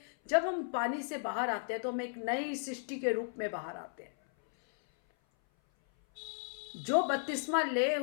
जब हम पानी से बाहर आते हैं तो हम एक नई सृष्टि के रूप में बाहर आते हैं। जो बपतिस्मा ले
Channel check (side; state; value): right; silent; 55 dB below the other